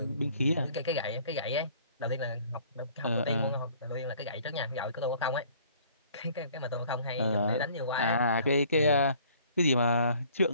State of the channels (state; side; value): inverted; both; correlation -0.55